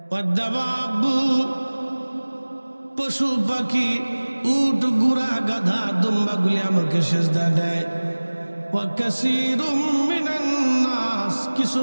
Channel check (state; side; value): inverted; both; correlation -1.00